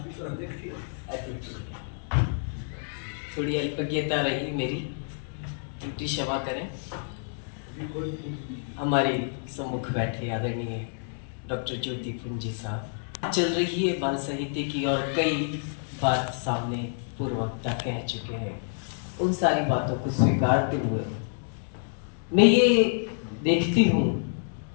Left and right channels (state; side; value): silent; right; digital silence